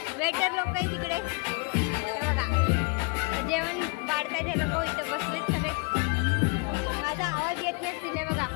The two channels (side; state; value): right; quieter; 33.1 dB